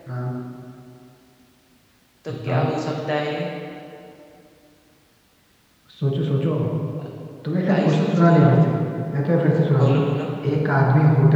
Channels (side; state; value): both; identical; correlation 1.00